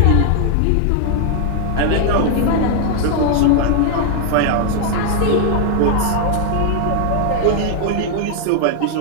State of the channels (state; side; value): different; both; correlation 0.00